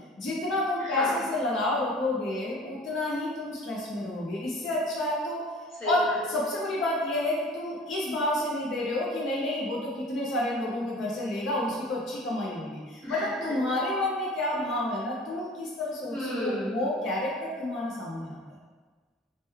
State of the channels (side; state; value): both; normal; correlation 0.43